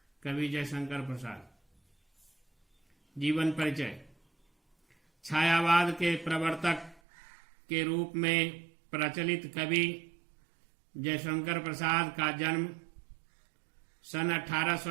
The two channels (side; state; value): left; drops out; at 7.0 s